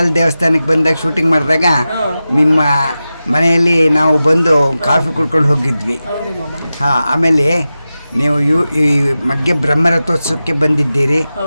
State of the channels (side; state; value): both; inverted; correlation -0.94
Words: ದೇವಸ್ಥಾನಕ್ಕೆ ಬಂದಾಗ ಶೂಟಿಂಗ್ ಮಾಡಿದಾಗ ನಿಮ್ಮ ಮನೆಯಲ್ಲಿ ನಾವು ಬಂದು ಕಾಫಿ ಕುಡ್ಕೊಂಡು ಹೋಗಿದ್ವಿ. ಆಮೇಲೆ ನೀವು ಈ ಮಗ್ಗೆ ಬ್ರಹ್ಮರಥೋತ್ಸವಕ್ಕೆ ಬಂದಿದ್ದೀರಿ.